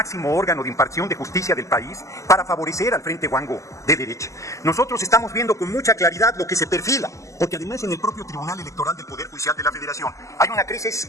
órgano de impartición de justicia del país para favorecer al Frente Guango de derecha. Nosotros estamos viendo con mucha claridad lo que se perfila, porque además en el propio Tribunal Electoral del Poder Judicial de la Federación hay una crisis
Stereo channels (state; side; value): late; right; 0.15 ms